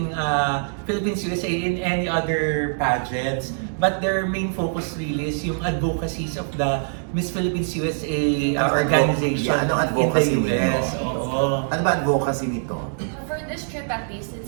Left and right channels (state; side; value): silent; left; digital silence